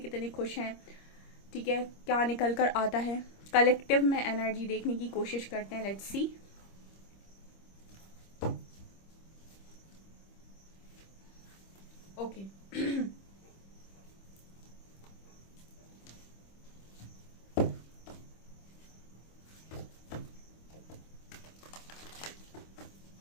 खुश हैं। ठीक है, क्या निकल कर आता है। कलेक्टिव में एनर्जी देखने की कोशिश करते हैं। Let's see. Okay,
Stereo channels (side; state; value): right; late; 25 ms